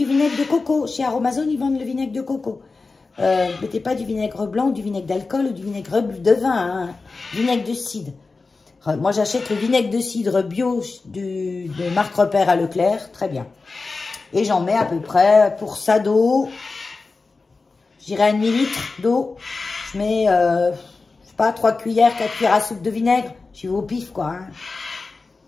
vinaigre de coco. Chez Aromazone, ils vendent le vinaigre de coco. Mettez pas du vinaigre blanc, du vinaigre d'alcool ou du vinaigre de vin, hein. Vinaigre de cidre. Moi, j'achète le vinaigre de cidre bio de marque Repère à Leclerc, très bien. Et j'en mets à peu près, pour ça d'eau, je dirais un demi-litre d'eau. Je mets, je sais pas, 3 cuillères, 4 cuillères à soupe de vinaigre. Je vais au pif, quoi. Hein.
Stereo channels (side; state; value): right; quieter; 3.9 dB